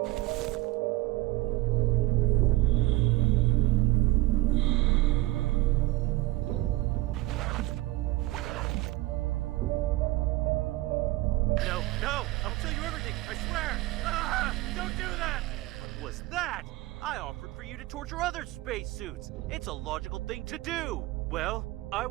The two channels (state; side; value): quieter; left; 18.5 dB